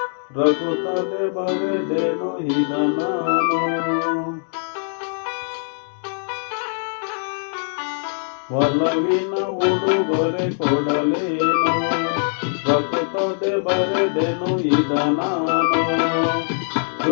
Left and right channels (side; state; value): right; silent; digital silence